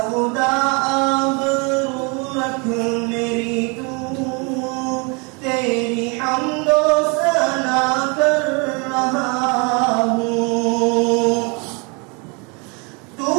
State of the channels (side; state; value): left; quieter; 31.8 dB